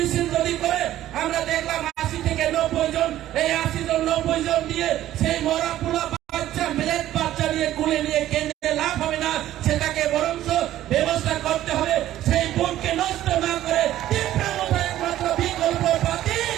যদি করে আমরা দেখলাম 80 থেকে 90 জন, এই 80 জন 90 জন দিয়ে সেই মরা পোলা বাচ্চা মিলেট বাচ্চা নিয়ে কুলে নিয়ে কেন্দ্রে লাভ হবে না, সেটাকে বরঞ্চ ব্যবস্থা করতে হবে। সেই ভোটকে নষ্ট না করে তীব্র একমাত্র বিকল্প পার্টি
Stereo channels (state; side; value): quieter; left; 13.4 dB